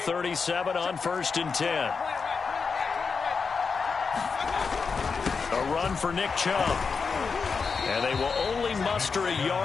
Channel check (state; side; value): quieter; right; 5.2 dB